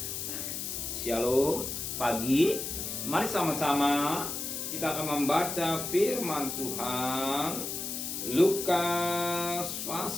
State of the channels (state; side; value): noise; left; hiss, 4 dB below the sound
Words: Amin. Shalom. Pagi, mari sama-sama kita akan membaca firman Tuhan Lukas